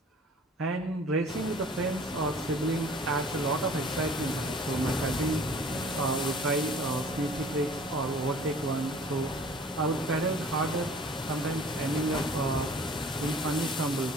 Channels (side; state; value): both; normal; correlation 0.49